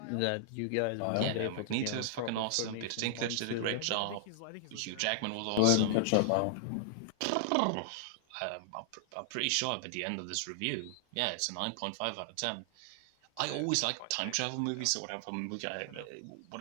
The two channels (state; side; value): different; both; correlation -0.01